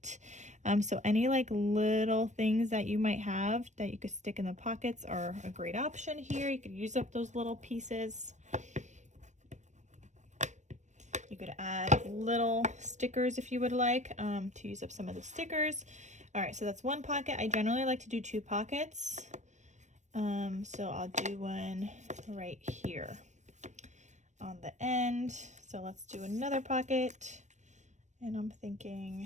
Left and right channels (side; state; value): left; late; 0.34 ms